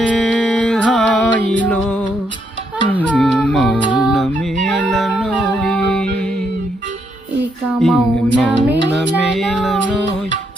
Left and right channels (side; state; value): both; normal; correlation 0.76